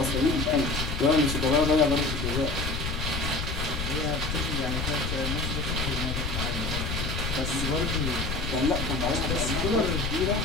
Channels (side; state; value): left; noise; rumble, 3 dB below the sound